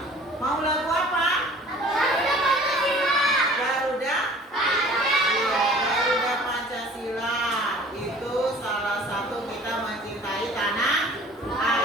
Mau lagu apa? Garuda? Iya, Garuda Pancasila. Itu salah satu kita mencintai tanah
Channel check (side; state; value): both; normal; correlation 0.48